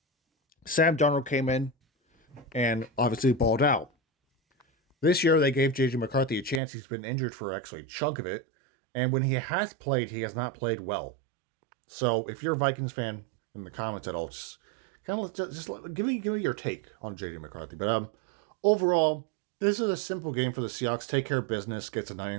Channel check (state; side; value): drops out; left; at 6.6 s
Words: Sam Darnold came in and obviously balled out. This year they gave JJ McCarthy a chance. He's been injured for actually a chunk of it, and when he has played, he has not played well. So if you're a Vikings fan in the comments at all, just kind of give me your take on JJ McCarthy. But overall, this is a simple game for the Seahawks. Take care of business, gets a